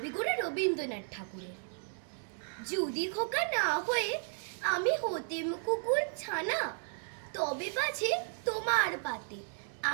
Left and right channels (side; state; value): left; silent; 55 dB below the other